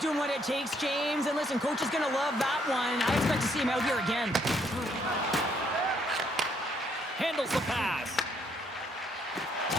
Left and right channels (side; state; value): both; normal; correlation 0.70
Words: what it takes, James. And listen, coach is going to love that one. I expect to see him out here again. Handles the pass.